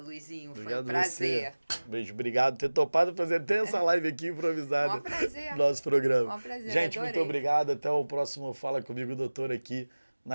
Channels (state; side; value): inverted; both; correlation -1.00